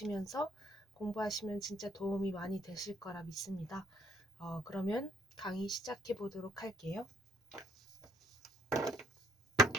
공부하시면 진짜 도움이 많이 되실 거라 믿습니다. 그러면 강의 시작해 보도록 할게요.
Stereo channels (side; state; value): both; normal; correlation 0.65